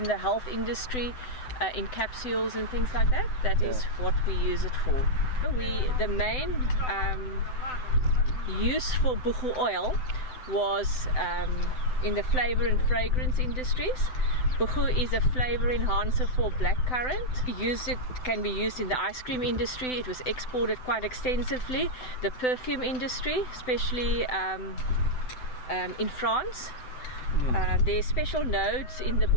the health industry, in capsules and things like that. That is what we use it for. The main use for buchu oil was in the flavor and fragrance industries. Buchu is a flavor enhancer for blackcurrant. It can be used in the ice cream industry. It was exported quite extensively. The perfume industry, especially in France. There are special nodes in the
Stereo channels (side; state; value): right; late; 7.9 ms